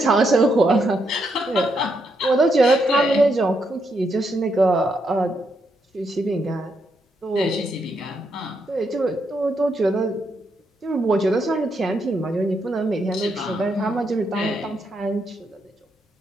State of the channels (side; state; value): both; normal; correlation 0.79